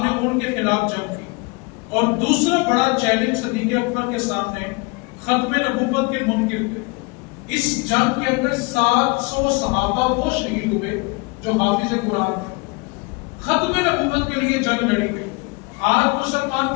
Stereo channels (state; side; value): quieter; right; 28.0 dB